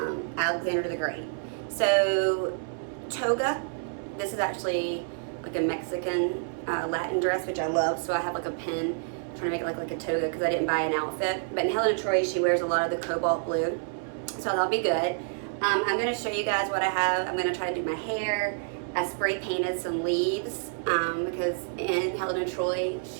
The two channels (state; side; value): silent; left; 59 dB below the other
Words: Alexander the Great. So toga, this is actually like a Mexican Latin dress, which I love, so I have like a pin trying to make it look like a toga because I didn't buy an outfit. But in Helen of Troy, she wears a lot of the cobalt blue, so that'll be good. I'm going to show you guys what I have. I'm going to try to do my hair. I spray painted some leaves because in Helen of Troy,